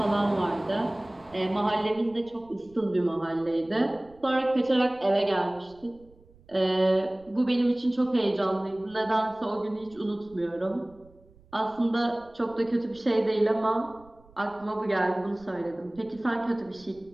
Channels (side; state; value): right; noise; rumble, 28 dB below the sound